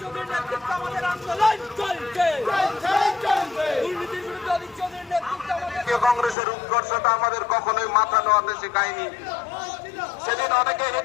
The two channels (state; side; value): drops out; right; at 6.4 s